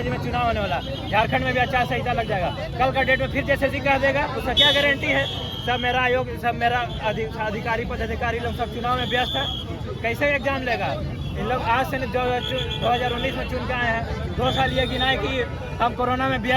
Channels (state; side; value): identical; both; correlation 1.00